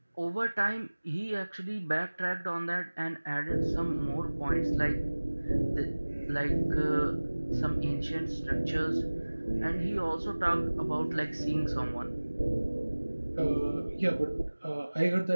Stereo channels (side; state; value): both; inverted; correlation -1.00